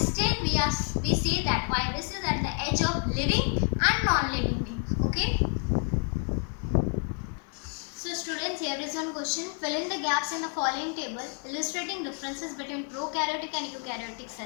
still we say that viruses are at the edge of living and non-living beings. Okay. So students, here is one question. Fill in the gaps in the following table illustrating differences between prokaryotic and eukaryotic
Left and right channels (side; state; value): right; quieter; 39.5 dB